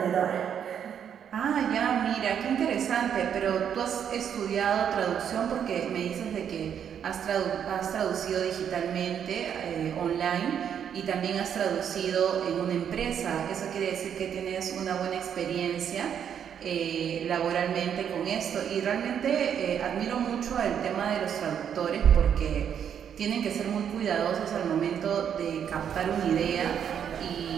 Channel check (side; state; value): left; quieter; 8.5 dB